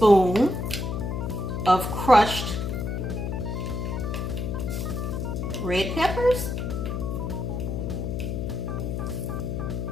of crushed red peppers.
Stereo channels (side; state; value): left; noise; hum, 2 dB below the sound